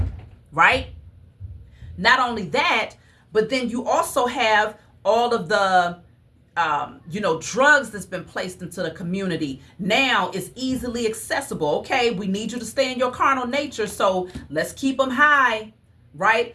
right? Not only that, but then you also have all of the drugs that's been placed into the community. Now it's easily accessible. Okay, we need you to stay in your carnal nature, so let's keep them high,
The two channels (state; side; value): identical; both; correlation 1.00